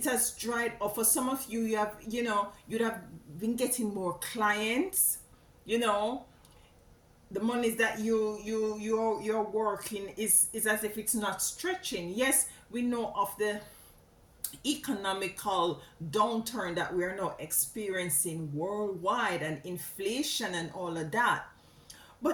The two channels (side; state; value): both; identical; correlation 1.00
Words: has dried up. For some of you, you'd have been getting more clients. you know the monies that you're working is as if it's not stretching. Yes, we know of the economical downturn that we are now experiencing worldwide, and inflation and all of that,